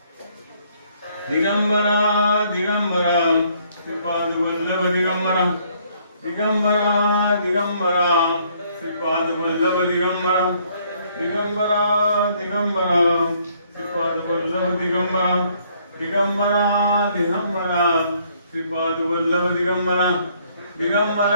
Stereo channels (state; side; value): inverted; both; correlation -0.66